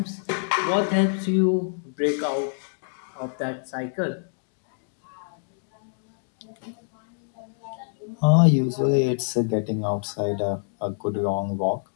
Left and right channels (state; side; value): silent; right; digital silence